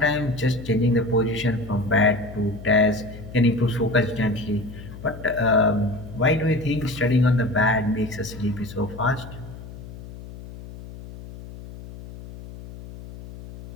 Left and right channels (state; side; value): noise; left; hum, 14 dB below the sound